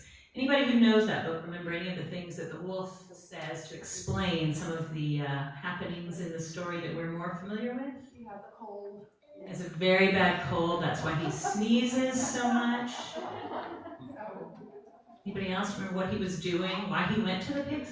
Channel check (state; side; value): identical; both; correlation 1.00